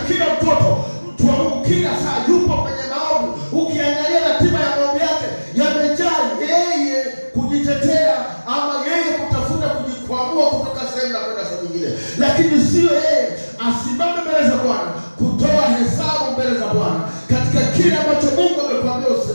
kile ambacho Mungu amekuambia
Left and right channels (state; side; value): inverted; both; correlation -1.00